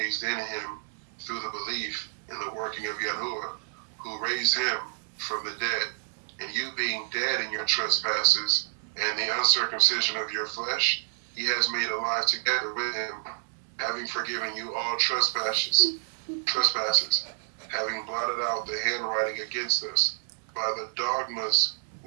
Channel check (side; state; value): left; silent; 59 dB below the other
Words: in him through the belief in the working of Yahuwah, who raised him from the dead, and you being dead in your trespasses and the uncircumcision of your flesh, he has made alive together with him, having forgiven you all trespasses, having blotted out the handwriting against us by the dogmas